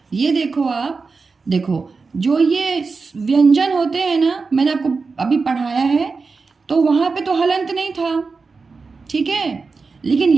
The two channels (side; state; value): left; quieter; 4.5 dB